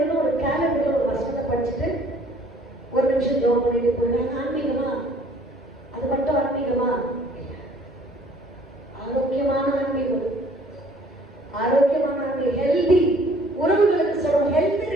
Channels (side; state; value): both; normal; correlation 0.56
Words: ஒரு கேலண்டர்ல ஒரு வசனத்தை படிச்சுட்டு 1 நிமிஷம் ஜோம் பண்ணிட்டு போயிடுறாங்க. ஆன்மீகமா? அது மட்டும் ஆன்மீகமா? ஆரோக்கியமான ஆன்மீகம், ஆரோக்கியமான ஆன்மீகம், ஹெல்தி உறவுகளுக்கு சொல்றோம், ஹெல்தி